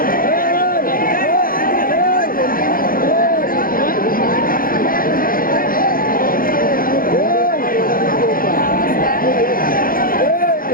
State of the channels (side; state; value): right; late; 0.41 ms